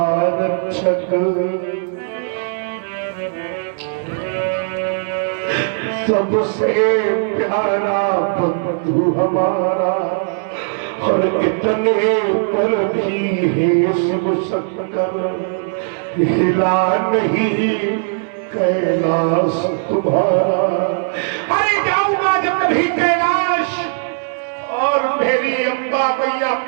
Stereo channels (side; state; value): left; silent; digital silence